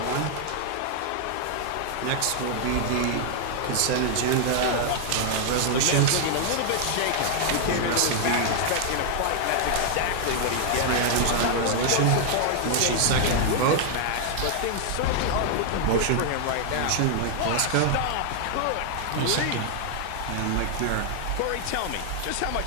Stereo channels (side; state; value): both; different; correlation 0.00